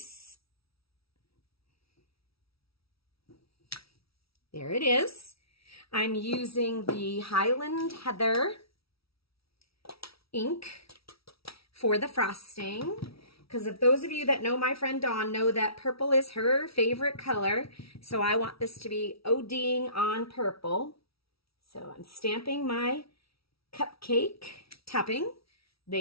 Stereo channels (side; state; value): right; late; 0.76 ms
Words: There it is. I'm using the Highland Heather ink for the frosting, because if those of you that know my friend Dawn know that purple is her favorite color, so I want this to be ODing on purple. So I'm stamping my cupcake topping.